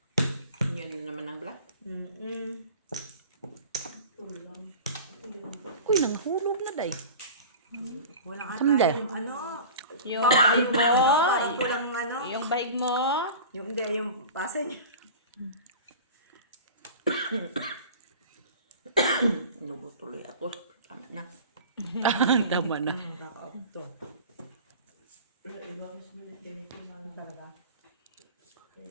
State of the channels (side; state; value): both; inverted; correlation -0.37